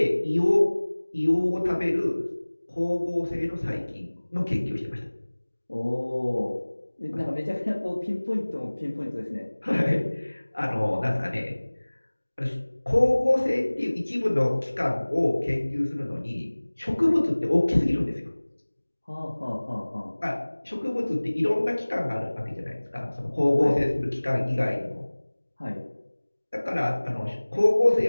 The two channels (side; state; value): both; inverted; correlation -1.00